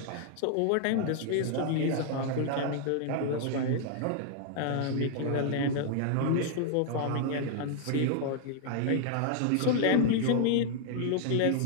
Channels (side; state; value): both; different; correlation 0.00